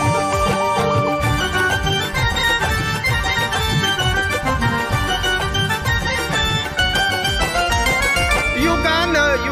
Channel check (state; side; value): identical; both; correlation 1.00